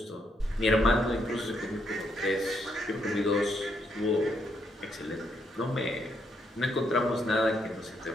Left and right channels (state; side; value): normal; both; correlation 0.76